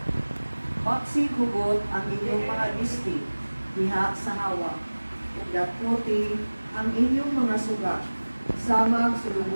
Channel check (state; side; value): inverted; both; correlation -1.00